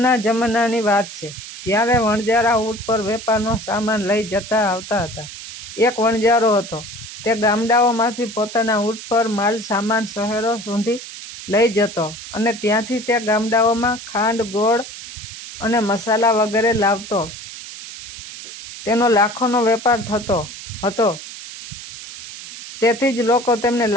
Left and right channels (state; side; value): noise; right; hiss, 12 dB below the sound